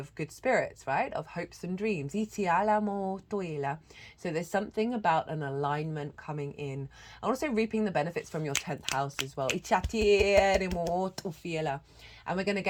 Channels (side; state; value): both; identical; correlation 1.00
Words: good spirits, right? Of hopes and dreams. So there's something about an alignment coming in, and also reaping the benefits from your 10th house as well. And we're going to